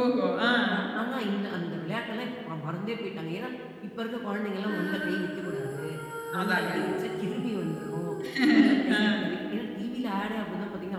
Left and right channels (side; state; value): both; identical; correlation 1.00